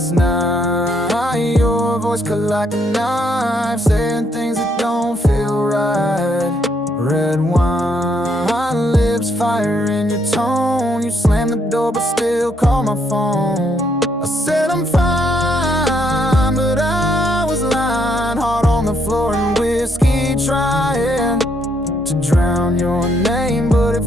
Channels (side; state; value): both; normal; correlation 0.73